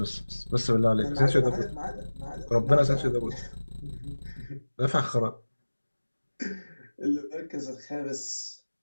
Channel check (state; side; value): inverted; both; correlation -1.00